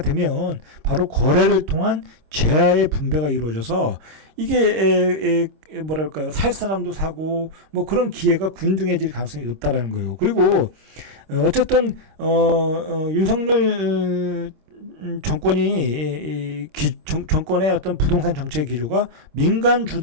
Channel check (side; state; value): left; late; 26 ms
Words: 되면 바로 거래를 통한 재화의 분배가 이루어져서 이게 뭐랄까요, 살 사람도 사고 뭐 그런 기회가 균등해질 가능성이 높다라는 거예요. 그리고 어쨌든 윤석열 정권의 어떤 부동산 정책 기조가 민간